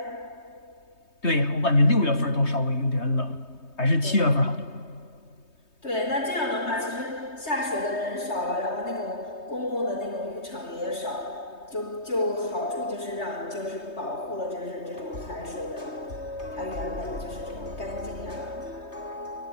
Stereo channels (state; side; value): late; right; 3.2 ms